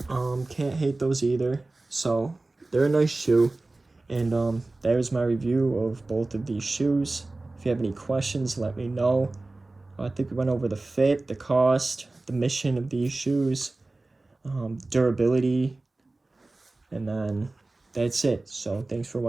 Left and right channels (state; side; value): quieter; left; 3.1 dB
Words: Can't hate those either. So, they're a nice shoe. And that was my review of both of these shoes. If you have any questions, let me know. I think we went over the fit, the cost, the mission of these shoes, durability, and then that's it. So thanks for